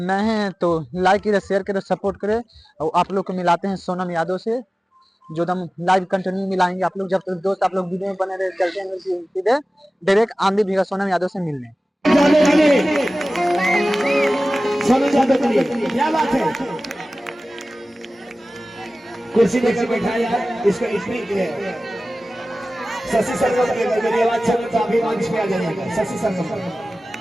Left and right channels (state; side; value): normal; both; correlation 0.97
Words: हैं तो लाइक करें, शेयर करें, सपोर्ट करें। और आप लोग को मिलाते हैं सोनम यादव से, जो हम लाइव कंटिन्यू मिलाएंगे आप लोग। जब तक दोस्त आप लोग वीडियो में बने रहे, चलते हैं सीधे डायरेक्ट आंधी भीगा सोनम यादव से मिलने। सोनम यादव के लिए क्या बात है, कुर्सी लेकर बैठा यार। इसको इतनी शशि सरगम के मेरी आवाज चल तो अभी मंच पे आ जाइएगा। शशि सरगम